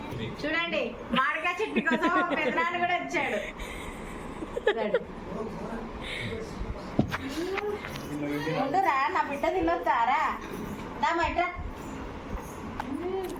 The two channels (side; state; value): both; identical; correlation 1.00